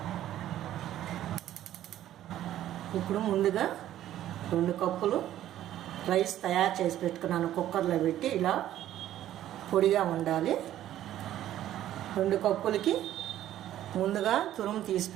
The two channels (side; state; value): left; quieter; 12.5 dB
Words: ఇప్పుడు ముందుగా 2 కప్పులు రైస్ తయారు చేసి పెట్టుకున్నాను. కుక్కర్లో పెట్టి ఇలా పొడిగా ఉండాలి. 2 కప్పులకి ముందుగా తురుము తీసి